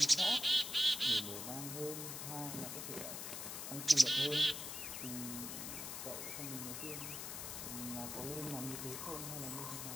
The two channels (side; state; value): left; noise; hiss, 6 dB below the sound